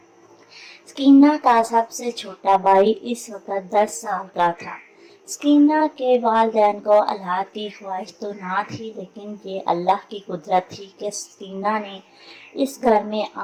स्कीना का सबसे छोटा भाई इस वक्त 10 साल का था। स्कीना के वालिदैन को औलाद की ख्वाहिश तो ना थी, लेकिन ये अल्लाह की कुदरत थी कि स्कीना ने इस घर में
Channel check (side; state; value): both; identical; correlation 1.00